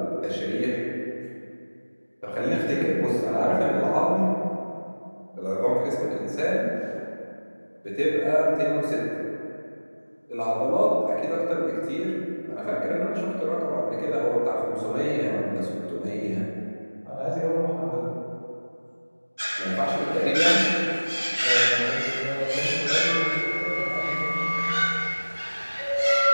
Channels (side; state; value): both; inverted; correlation -1.00